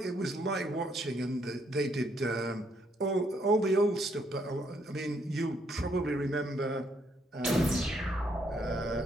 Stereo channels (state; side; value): normal; both; correlation 0.72